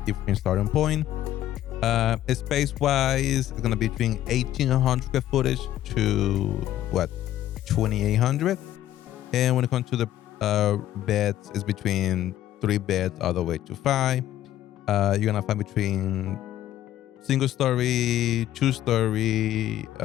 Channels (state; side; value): quieter; right; 12.8 dB